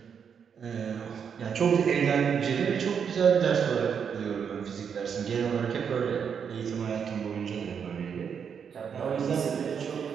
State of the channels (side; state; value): left; quieter; 7.1 dB